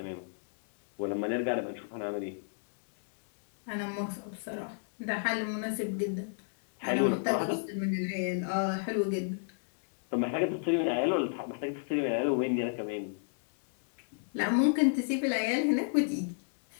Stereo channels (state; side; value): silent; right; digital silence